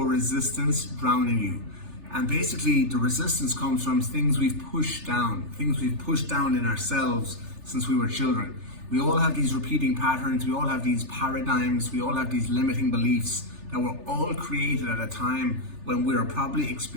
resistance drowning you? And basically the resistance comes from things we've pushed down in ourselves since we were children. We all have these repeating patterns, we all have these paradigms, we all have these limiting beliefs that were all created at a time when we were probably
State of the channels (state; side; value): late; left; 3.4 ms